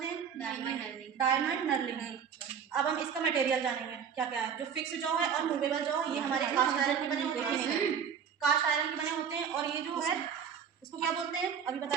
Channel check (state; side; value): quieter; left; 7.4 dB